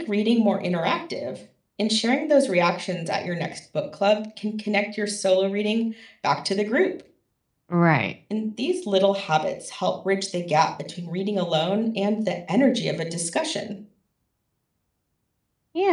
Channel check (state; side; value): identical; both; correlation 1.00